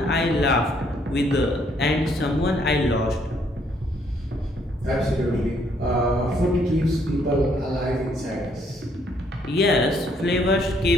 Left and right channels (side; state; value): both; normal; correlation 0.68